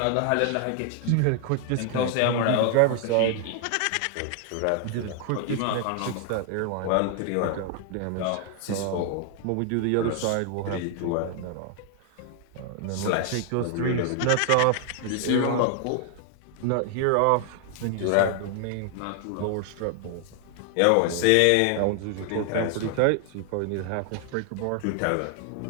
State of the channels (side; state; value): both; different; correlation 0.00